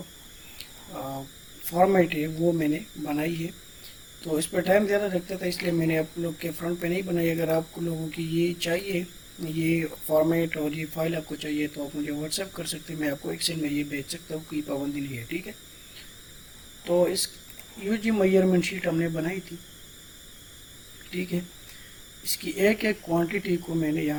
फॉर्मेट है वो मैंने बनाई है। तो इस पर टाइम ज़्यादा लगता था इसलिए मैंने आप लोग के फ्रंट पे नहीं बनाई। अगर आप लोगों की ये चाहिए, ये फॉर्मेट और ये फाइल आपको चाहिए, तो आप मुझे व्हाट्सएप कर सकते हैं, मैं आपको एक्सेल में ये भेज सकता हूँ, कोई पाबंदी नहीं है। ठीक है, तो इस यूजी मेजरमेंट शीट हमने बनाई थी। ठीक है, इसकी एक एक क्वांटिटी को मैंने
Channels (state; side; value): identical; both; correlation 1.00